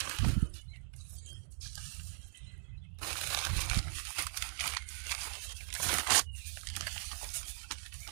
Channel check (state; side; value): silent; left; digital silence